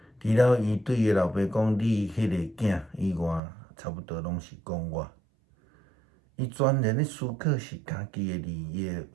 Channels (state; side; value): drops out; left; at 3.4 s